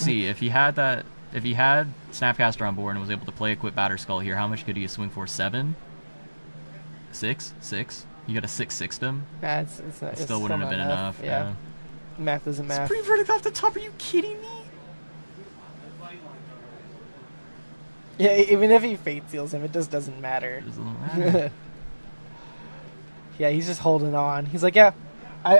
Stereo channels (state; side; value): inverted; both; correlation -1.00